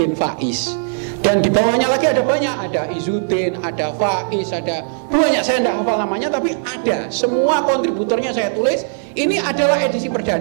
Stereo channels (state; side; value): silent; left; 63 dB below the other